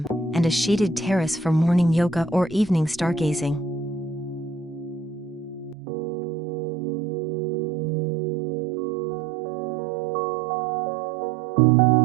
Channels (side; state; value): left; drops out; at 5.8 s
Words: and a shaded terrace for morning yoga or evening stargazing.